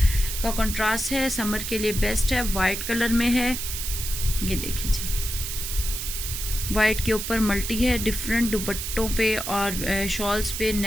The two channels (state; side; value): noise; right; hiss, 5 dB below the sound